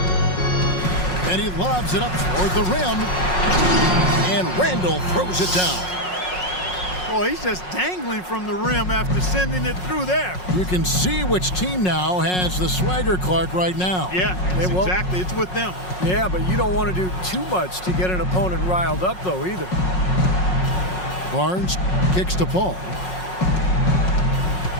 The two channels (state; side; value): late; right; 5.5 ms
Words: And he lobs it up toward the rim. And Randall throws it down. Boy, he's just dangling from the rim after sending it through there. You can see which team now has the swagger, Clark, right now. Yeah, exactly. It's with them. Yeah, but you don't want to do too much to get an opponent riled up, though, either. Barnes kicks to Paul.